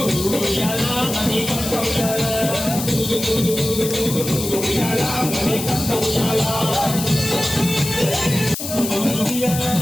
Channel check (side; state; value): left; noise; hiss, 6 dB below the sound